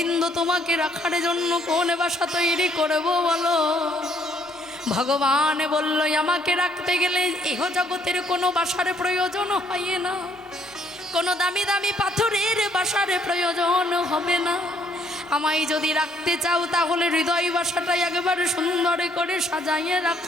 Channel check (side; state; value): both; normal; correlation 0.66